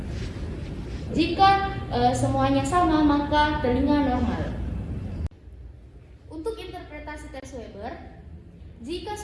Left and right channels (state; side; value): identical; both; correlation 1.00